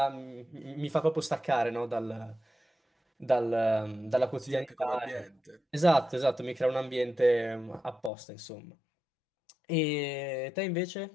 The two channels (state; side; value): drops out; right; at 8.1 s